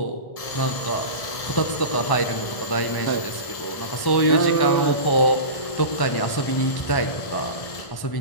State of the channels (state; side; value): late; right; 1.1 ms